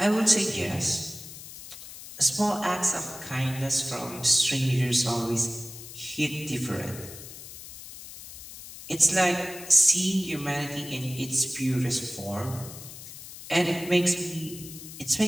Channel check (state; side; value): noise; left; hiss, 14 dB below the sound